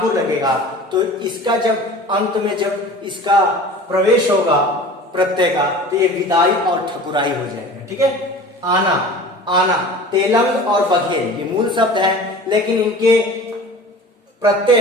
लगेगा तो इसका जब अंत में जब इसका प्रवेश होगा प्रत्यय का तो ये विदाई और ठकुराई हो जाएगा। ठीक है, आना, तेलंग और बघेल ये मूल शब्द हैं, लेकिन इनके प्रत्यय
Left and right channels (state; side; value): normal; both; correlation 0.40